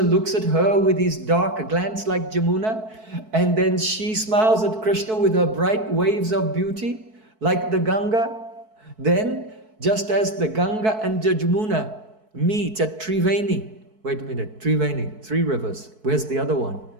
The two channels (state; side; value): late; left; 4.6 ms